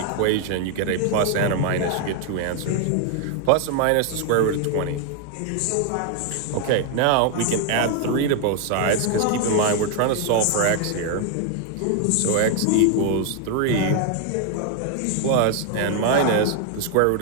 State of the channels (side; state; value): both; different; correlation 0.00